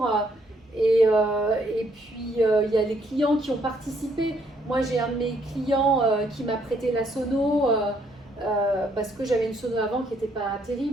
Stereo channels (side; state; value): both; normal; correlation 0.70